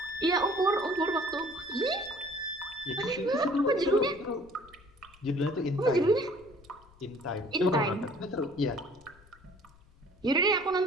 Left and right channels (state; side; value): noise; left; rumble, 26 dB below the sound